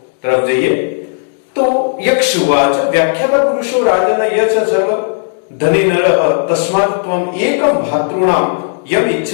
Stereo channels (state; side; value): silent; right; digital silence